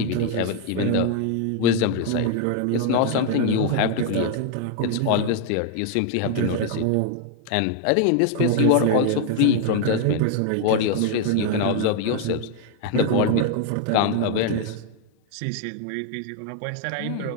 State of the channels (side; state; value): both; different; correlation 0.00